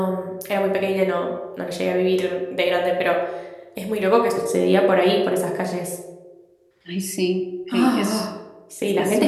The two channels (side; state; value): both; identical; correlation 1.00